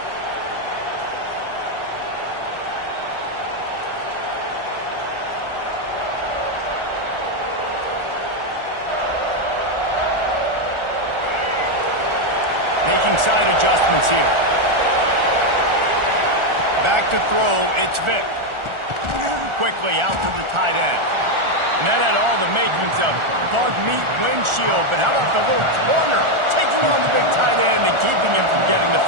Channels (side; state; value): left; late; 1.4 ms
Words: Making side adjustments here. Back to throw, it's Vic. Quickly out to the tight end. And that had all the makings of bug meat windshield, but how about the little corner taking on the big tight end and keeping him from getting the